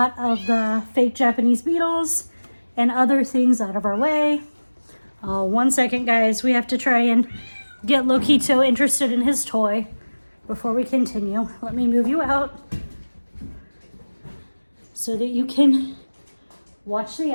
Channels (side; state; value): both; inverted; correlation -1.00